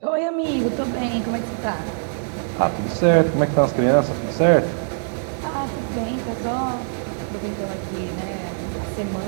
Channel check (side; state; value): left; silent; digital silence